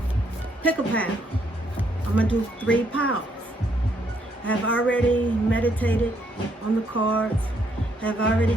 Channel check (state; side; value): normal; both; correlation 0.72